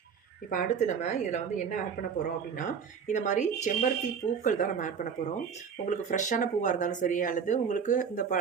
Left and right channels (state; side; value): quieter; left; 6.7 dB